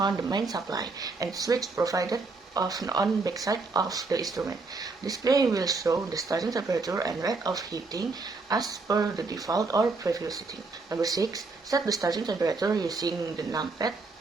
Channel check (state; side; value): quieter; left; 3.9 dB